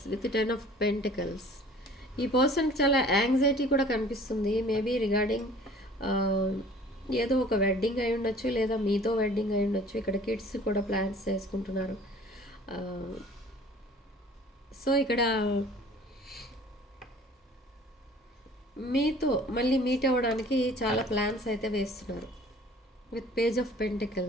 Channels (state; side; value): normal; both; correlation 0.50